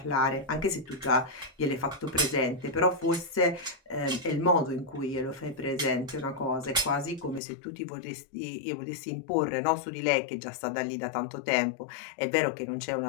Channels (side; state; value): right; drops out; at 7.4 s